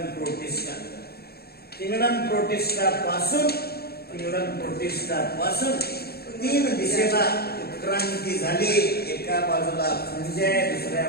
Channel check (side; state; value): right; late; 0.46 ms